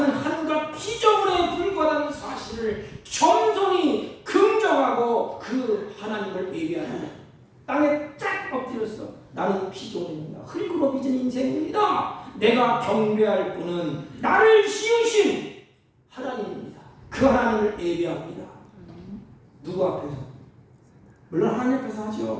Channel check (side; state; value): both; identical; correlation 1.00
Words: 한낱 피조물에 불과한 사실을 겸손히 긍정하고 그 하나님을 예배하는 땅에 쫙 엎드렸어. 나는 피조물입니다. 흙으로 빚은 인생입니다. 내가 경배할 분은 나를 지으신 하나님입니다. 그 하나님을 예배합니다. 누구 앞에서? 물론 하나님 앞에서